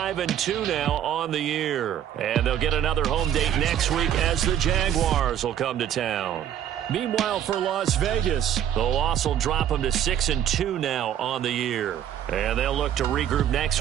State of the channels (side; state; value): left; quieter; 10.4 dB